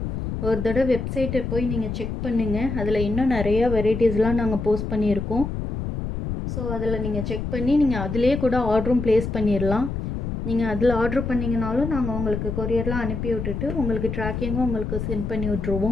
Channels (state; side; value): noise; left; rumble, 4 dB below the sound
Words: ஒரு தடவை வெப்சைட்டை போய் நீங்கள் செக் பண்ணுங்கள். அதில் இன்னும் நிறையா வெரைட்டிஸ்லாம் நாங்கள் போஸ்ட் பண்ணியிருக்கோம். ஸோ அதில் நீங்கள் செக் பண்ணி நீங்கள் அதிலே கூட ஆர்டரும் ப்ளேஸ் பண்ணிடலாம். நீங்கள் அதில் ஆர்டர் பண்ணிங்கனாலும் நாங்கள் உங்களுக்கு கொரியர்லாம் அனுப்பி விட்டுட்டு உங்களுக்கு ட்ராக்கிங்கும் உங்களுக்கு சென்ட் பண்ணி